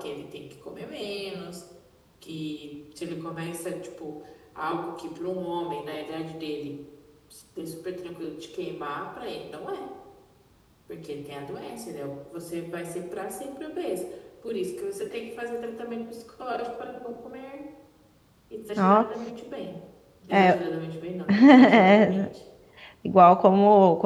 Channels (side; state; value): both; identical; correlation 1.00